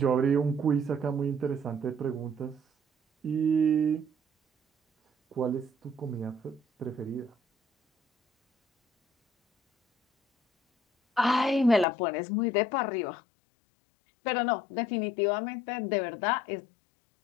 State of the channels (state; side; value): drops out; right; at 11.9 s